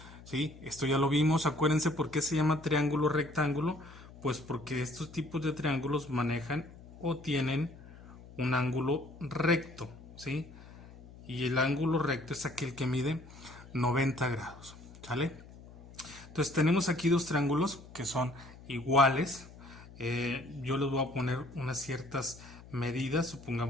¿Sí? Esto ya lo vimos. Acuérdense por qué se llama triángulo rectángulo, pues porque estos tipos de triángulos manejan o tienen un ángulo recto, ¿sí? Y el ángulo recto es aquel que mide 90 grados, ¿sale? Entonces tenemos aquí dos triángulos que son iguales. Yo les voy a poner unas ciertas medidas.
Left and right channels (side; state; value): left; noise; hum, 19 dB below the sound